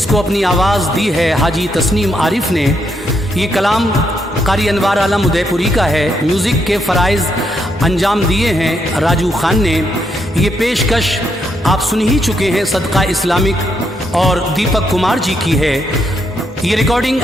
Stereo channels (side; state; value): both; normal; correlation 0.78